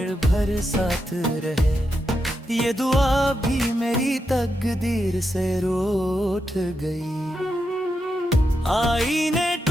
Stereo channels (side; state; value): both; normal; correlation 0.85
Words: भर साथ रहे, ये दुआ भी मेरी तकदीर से रूठ गई। आईने